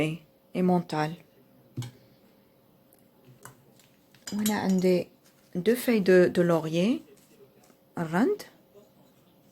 et mental. On a 2 feuilles de laurier. Rand.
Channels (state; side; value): identical; both; correlation 1.00